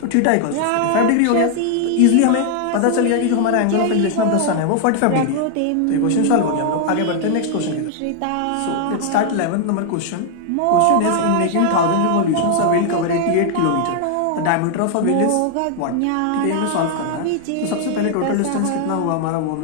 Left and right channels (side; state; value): both; different; correlation 0.00